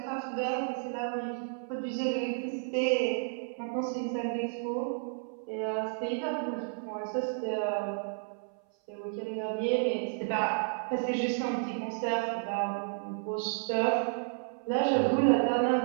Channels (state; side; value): silent; left; 57 dB below the other